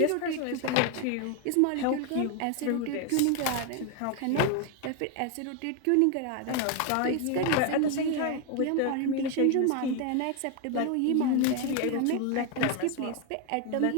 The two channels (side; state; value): both; different; correlation 0.01